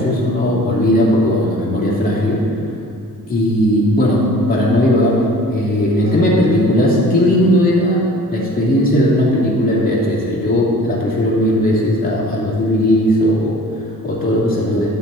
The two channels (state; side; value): normal; both; correlation 0.48